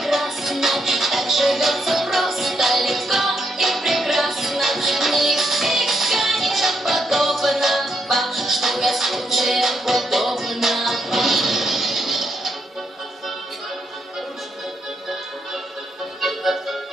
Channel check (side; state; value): both; normal; correlation 0.77